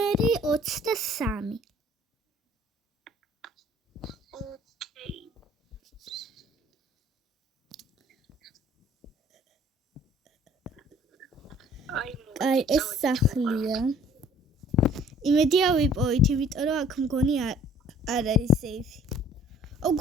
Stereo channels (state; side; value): normal; both; correlation 0.54